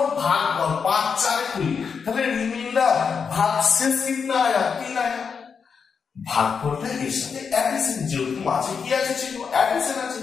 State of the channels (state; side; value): quieter; right; 6.0 dB